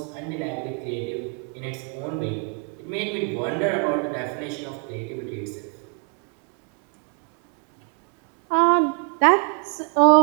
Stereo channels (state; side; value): quieter; left; 39.5 dB